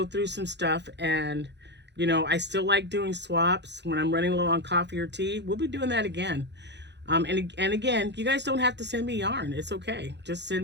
through some stuff, and, you know, I still like doing swaps when I'm running low on coffee or tea. We'll be doing that again. And again, you guys don't have to send me yarn. It's okay. Just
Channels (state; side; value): late; left; 0.50 ms